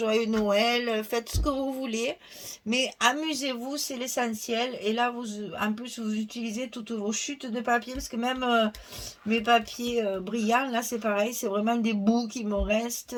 Noël, faites ce que vous voulez. Mais amusez-vous, c'est l'essentiel. Et là, vous, en plus, vous utilisez toutes vos chutes de papier, parce que même mes papiers brillants, là, c'est pareil, c'est vraiment des bouts qui me restent,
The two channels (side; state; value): both; identical; correlation 1.00